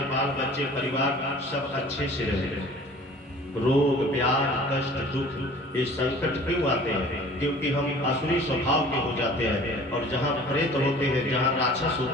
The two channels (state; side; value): normal; both; correlation 0.47